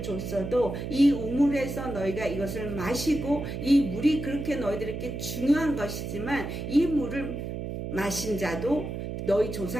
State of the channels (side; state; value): right; noise; hum, 5 dB below the sound